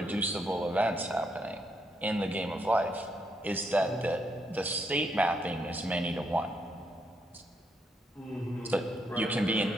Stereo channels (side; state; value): both; normal; correlation 0.77